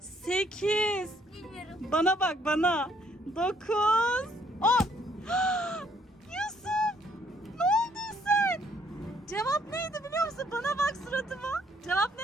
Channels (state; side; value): normal; both; correlation 0.66